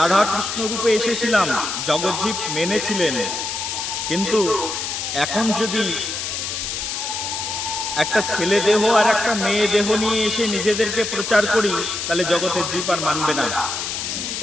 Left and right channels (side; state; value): left; noise; hiss, 4 dB below the sound